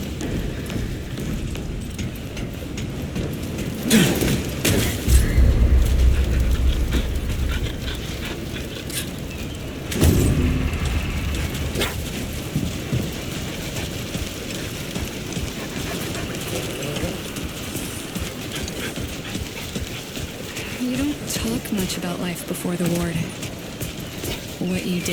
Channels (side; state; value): both; identical; correlation 1.00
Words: You don't talk much about life before the ward. What you